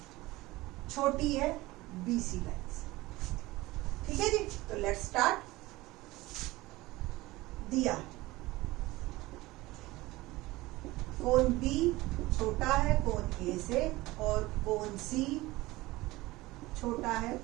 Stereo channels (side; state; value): left; quieter; 19.6 dB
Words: छोटी है बीसी लाइन से, ठीक है जी। तो लेट्स स्टार्ट। दिया कोण बी छोटा है कोण ए से और कोण सी छोटा है